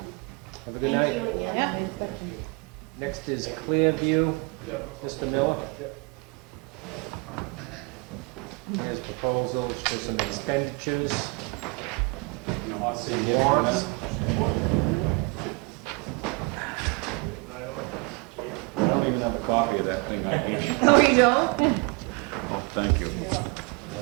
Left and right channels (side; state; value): left; quieter; 28.7 dB